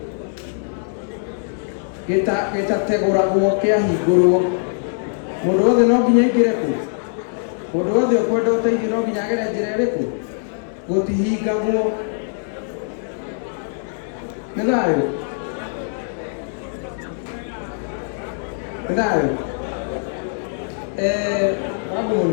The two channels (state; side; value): silent; right; 60 dB below the other